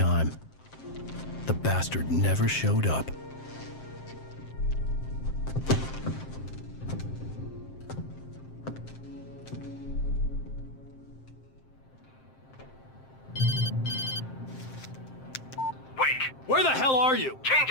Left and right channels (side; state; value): right; late; 7.6 ms